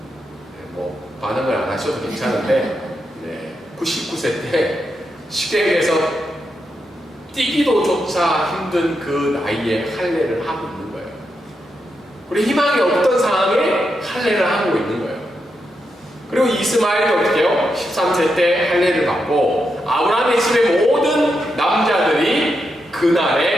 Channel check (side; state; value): both; normal; correlation 0.84